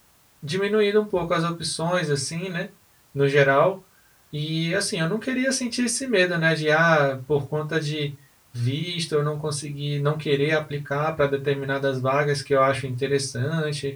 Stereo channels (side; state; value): both; identical; correlation 1.00